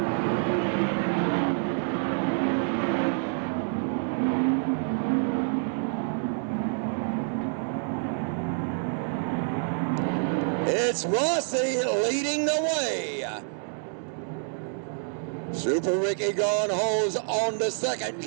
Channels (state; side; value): silent; left; 60 dB below the other